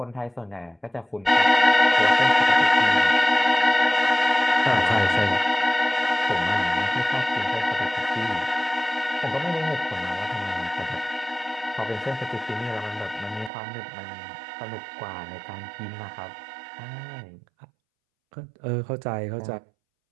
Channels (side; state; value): left; drops out; at 13.5 s